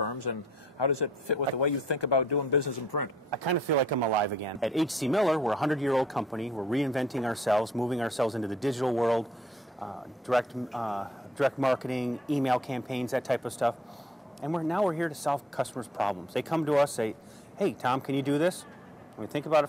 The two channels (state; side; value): normal; both; correlation 0.63